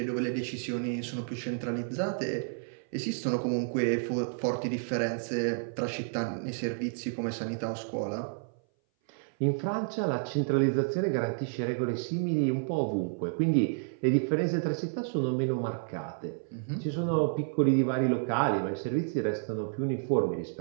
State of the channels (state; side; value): silent; left; 57 dB below the other